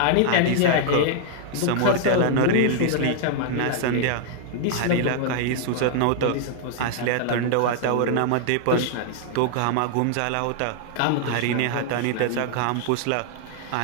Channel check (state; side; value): different; both; correlation 0.00